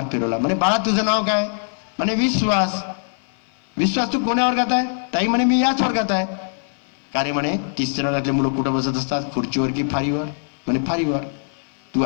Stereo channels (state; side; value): silent; right; 57 dB below the other